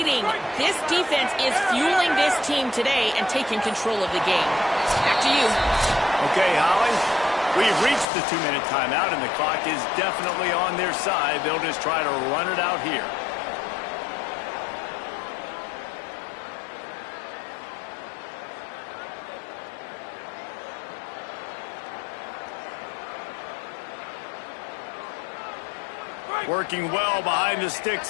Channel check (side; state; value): right; drops out; at 8.1 s